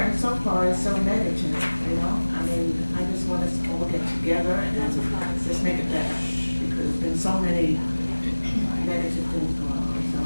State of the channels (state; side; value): inverted; both; correlation -1.00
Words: so far is so negative, you know. I mean, I just want us to all get together and just make it better, because there's been so many negative things going on. So